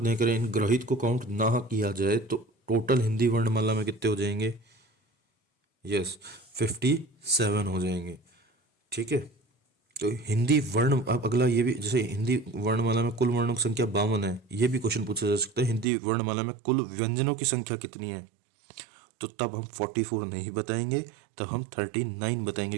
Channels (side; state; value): left; drops out; at 15.9 s